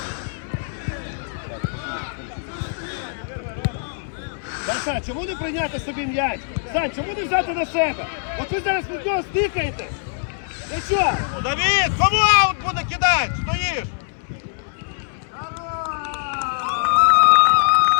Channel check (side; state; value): right; silent; 64 dB below the other